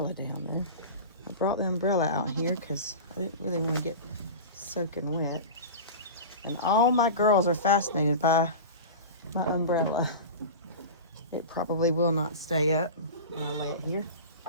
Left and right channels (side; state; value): both; inverted; correlation -0.30